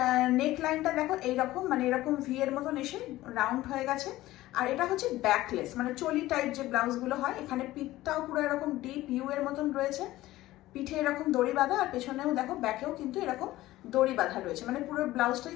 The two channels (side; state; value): right; quieter; 16.5 dB